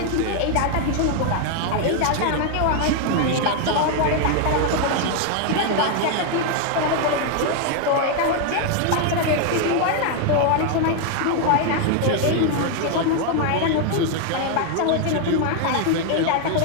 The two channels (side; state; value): both; different; correlation 0.00